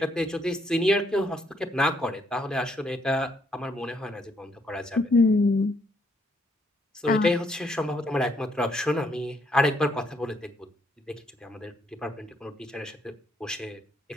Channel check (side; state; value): both; normal; correlation 0.72